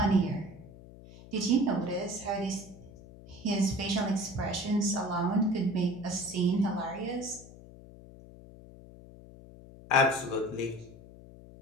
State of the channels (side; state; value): left; noise; hum, 19 dB below the sound